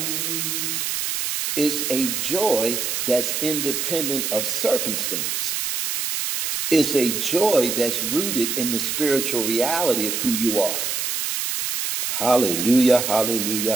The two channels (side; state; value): right; noise; hiss, 1 dB below the sound